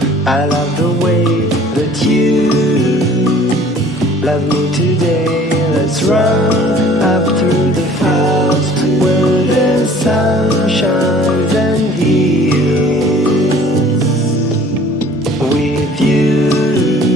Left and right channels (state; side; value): normal; both; correlation 0.51